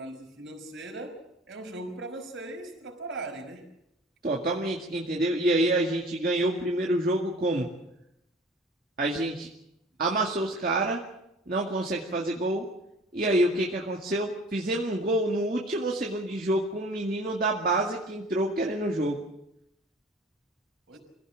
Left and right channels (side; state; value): both; normal; correlation 0.46